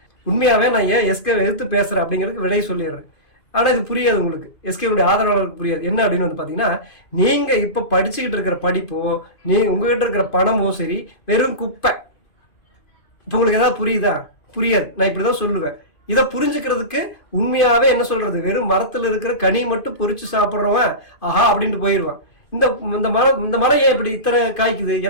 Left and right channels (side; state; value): right; late; 2.5 ms